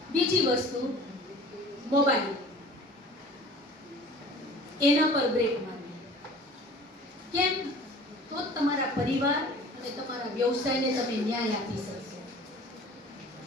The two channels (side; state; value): both; normal; correlation 0.45